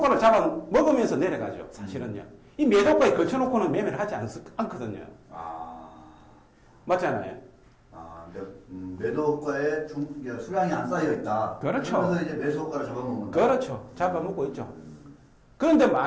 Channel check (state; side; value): identical; both; correlation 1.00